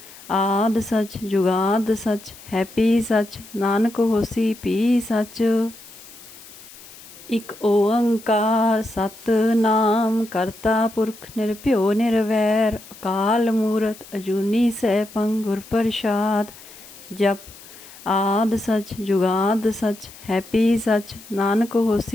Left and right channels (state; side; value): noise; left; hiss, 19 dB below the sound